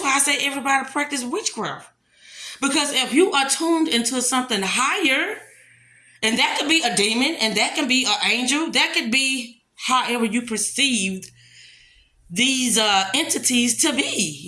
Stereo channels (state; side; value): identical; both; correlation 1.00